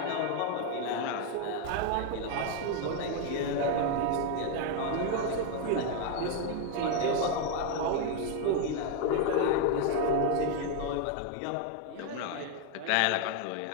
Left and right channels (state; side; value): different; both; correlation 0.01